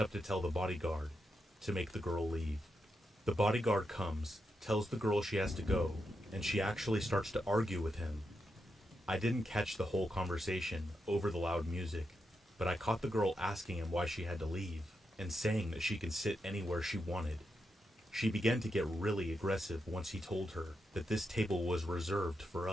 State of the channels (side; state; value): both; normal; correlation 0.85